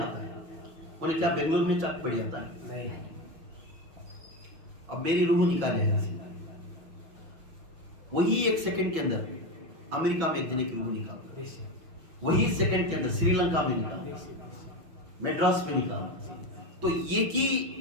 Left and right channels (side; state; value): left; late; 6.2 ms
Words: ہے، انہیں کیا بنگلور میں چاک پڑی آتا ہے؟ نہیں. اب میری روح نکالے ایسی، وہی ایک سیکنڈ کے اندر امریکہ میں ایک جنے کی روح نکالتا ہے، وہی سیکنڈ کے اندر سری لنکا میں نکالتا ہے، میڈراس میں نکالتا ہے. تو یہ کی